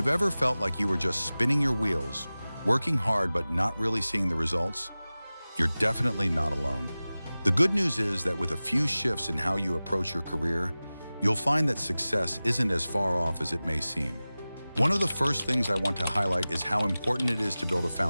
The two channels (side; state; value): both; inverted; correlation -0.97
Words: ever felt like you were just spinning your wheels, working hard but not really seeing the results, you're definitely not alone. The good news is that with a few shifts in how you approach your career, you'll find that success isn't as far off as it may seem. One of the first things I want to highlight is how important it is to build a